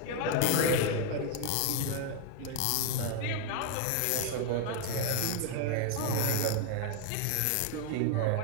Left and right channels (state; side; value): different; both; correlation 0.01